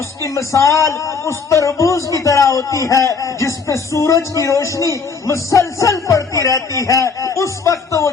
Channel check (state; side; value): quieter; right; 5.1 dB